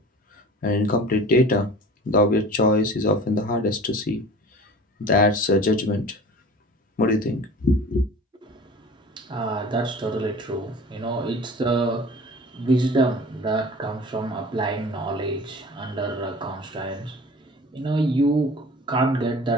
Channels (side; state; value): both; normal; correlation 0.42